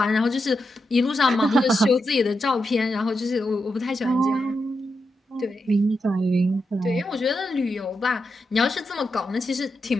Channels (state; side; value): normal; both; correlation 0.86